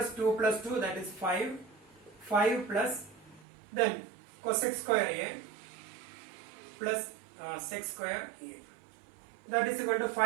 2 plus 2, that is 5. 5 plus then cosec square A plus sec square A. That is equal to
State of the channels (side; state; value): left; drops out; at 3.5 s